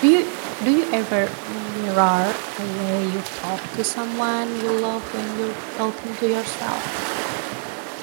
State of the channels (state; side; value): silent; left; digital silence